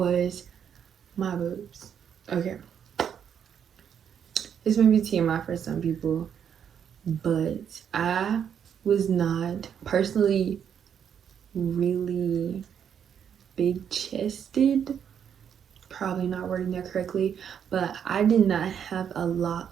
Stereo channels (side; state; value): left; quieter; 8.2 dB